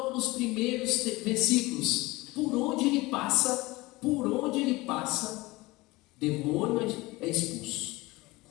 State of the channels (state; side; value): quieter; right; 21.3 dB